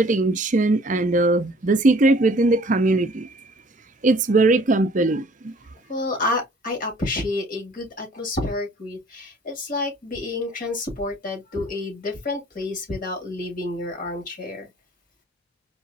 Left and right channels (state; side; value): normal; both; correlation 0.55